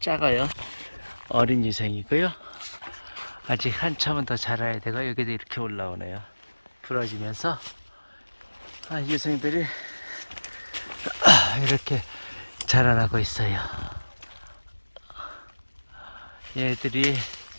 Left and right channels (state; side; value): inverted; both; correlation -1.00